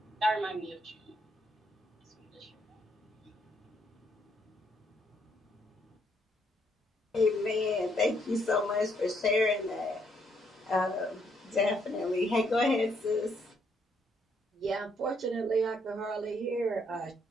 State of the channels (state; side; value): normal; both; correlation 0.72